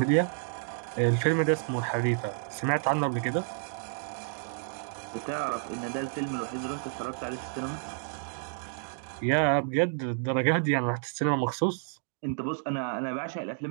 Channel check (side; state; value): left; silent; 58 dB below the other